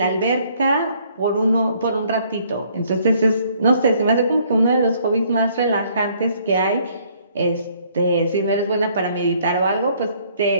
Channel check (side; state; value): both; inverted; correlation -0.64